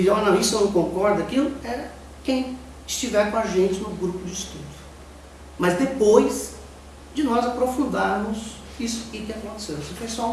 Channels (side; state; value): both; identical; correlation 1.00